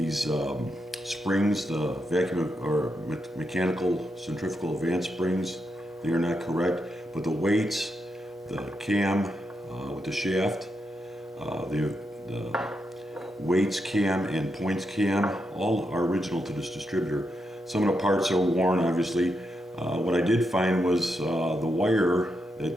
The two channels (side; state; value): both; normal; correlation 0.84